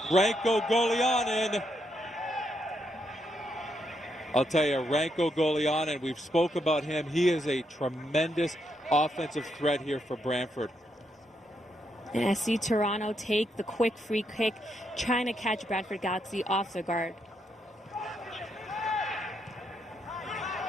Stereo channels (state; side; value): normal; both; correlation 0.79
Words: Ranko Golianin. I'll tell you, Ranko Golianin, we've spoke about him. He is a tremendous offensive threat here for Brantford. And SC Toronto take the quick free kick, trying to catch Brantford Galaxy off the guard.